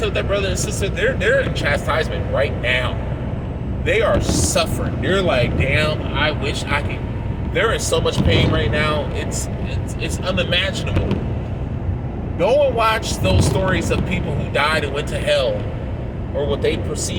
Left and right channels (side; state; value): both; identical; correlation 1.00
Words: with that brother and sister, they're in chastisement right now. They are suffering. They're like, damn, I wish I could. They're in so much pain right now. It's unimaginable. Go and watch those stories of people who died and went to hell, or what they